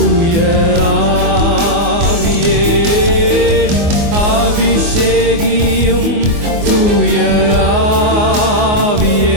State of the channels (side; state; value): left; late; 24 ms